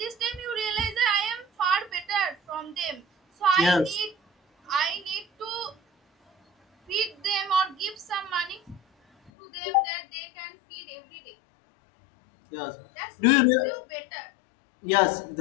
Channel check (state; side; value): drops out; right; at 9.3 s